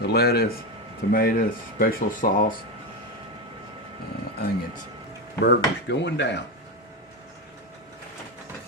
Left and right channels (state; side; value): normal; both; correlation 0.13